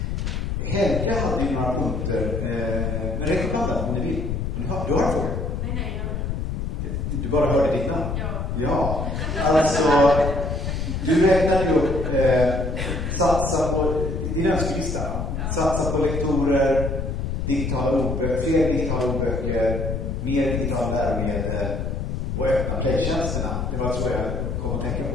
Helga hade ju några punkter. Men räck upp handen om ni vill. Du har en fråga? Nej. Du bara hörde ditt namn? Ja. Alltså, du räknade ju upp satsa på din önskelista. Satsa på lektorer, fler digitala ordböcker, mer digitala läromedel och öppna playtjänsterna. Det var så jag kom att tänka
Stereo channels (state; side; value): noise; left; rumble, 2 dB below the sound